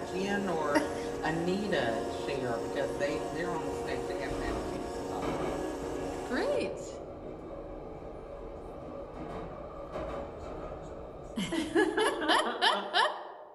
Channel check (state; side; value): identical; both; correlation 1.00